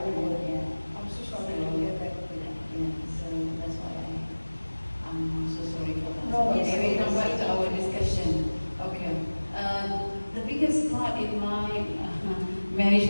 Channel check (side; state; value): both; inverted; correlation -1.00